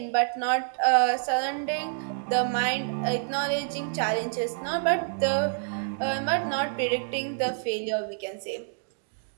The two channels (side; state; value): left; silent; digital silence